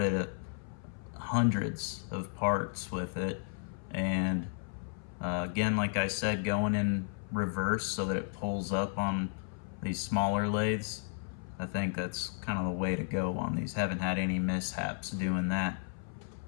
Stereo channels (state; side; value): silent; right; 55 dB below the other